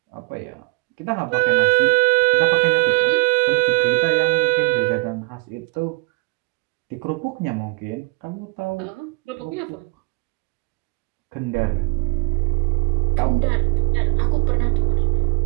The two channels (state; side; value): quieter; left; 27.4 dB